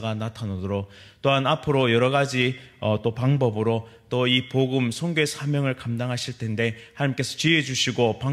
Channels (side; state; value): both; identical; correlation 1.00